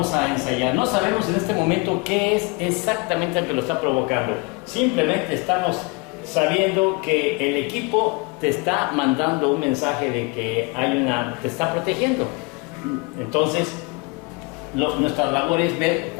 a ensayar. No sabemos en este momento qué es exactamente lo que lo está provocando. Simplemente estamos sabiendo que el equipo te está mandando un mensaje de que te está protegiendo. Entonces, nuestra labor es ver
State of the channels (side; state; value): right; quieter; 27.9 dB